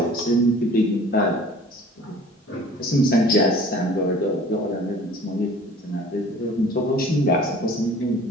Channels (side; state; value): both; normal; correlation 0.47